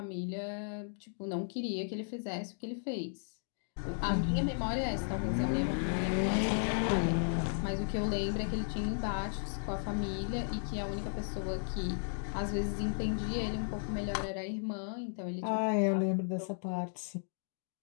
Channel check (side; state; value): right; silent; digital silence